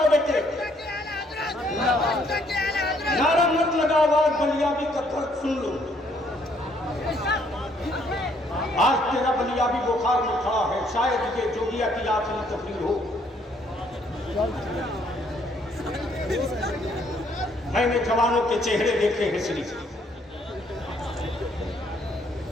बेटे, नारा मत लगाओ, आवाज बलियाबी का दर्द सुन लो। आज तेरा बलियाबी बुखार में खड़ा है, शायद ये जोगिया की आखिरी तकरीर हो। मैंने जवानों के चेहरे देखे हैं श्री,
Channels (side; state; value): both; normal; correlation 0.67